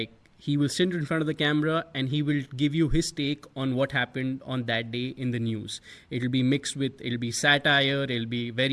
he will sit in front of the camera and he will give you his take on what happened on that day in the news. It'll be mixed with, it'll be satire, it'll be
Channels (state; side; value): identical; both; correlation 1.00